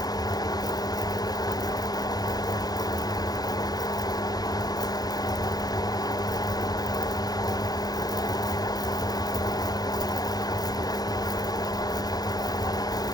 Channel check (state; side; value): late; right; 0.19 ms